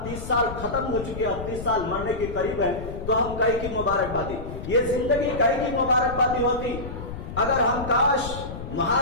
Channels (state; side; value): noise; left; rumble, 9 dB below the sound